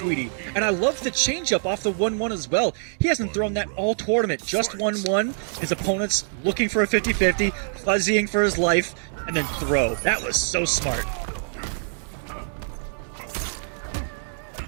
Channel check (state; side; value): silent; left; digital silence